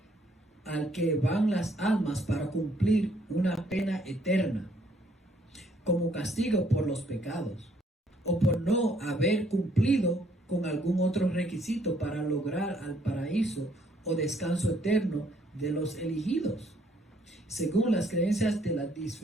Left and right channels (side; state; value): both; normal; correlation 0.66